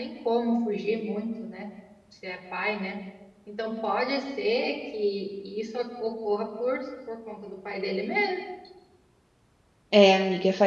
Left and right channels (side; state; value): both; identical; correlation 1.00